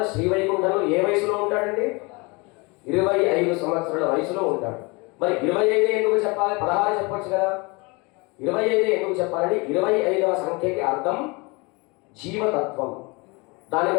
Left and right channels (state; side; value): quieter; right; 27.5 dB